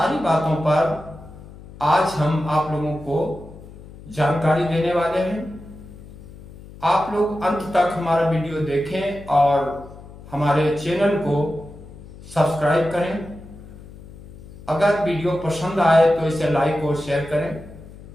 बातों पर आज हम आप लोगों को जानकारी देने वाले हैं। आप लोग अंत तक हमारा वीडियो देखें और हमारे चैनल को सब्सक्राइब करें। अगर वीडियो पसंद आए तो इसे लाइक और शेयर करें।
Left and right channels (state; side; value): noise; left; hum, 18 dB below the sound